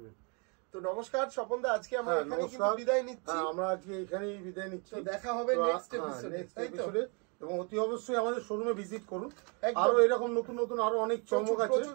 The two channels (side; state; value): left; quieter; 34.8 dB